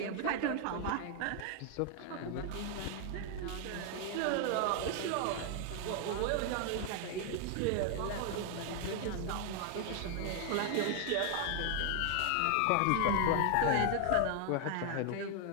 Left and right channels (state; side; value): different; both; correlation 0.00